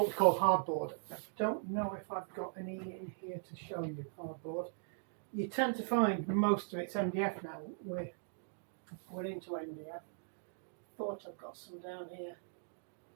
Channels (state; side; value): silent; left; digital silence